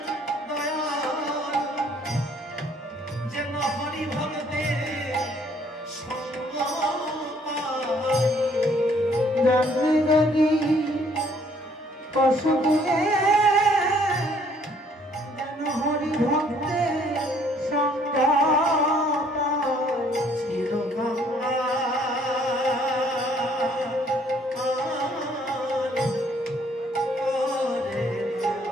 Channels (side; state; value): both; normal; correlation 0.62